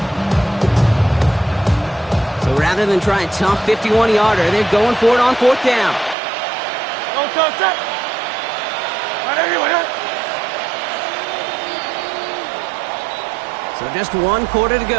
Rather than try a tough 51-yarder, they're going for it on 4th down. So just 1 quarter to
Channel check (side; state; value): left; drops out; at 6.2 s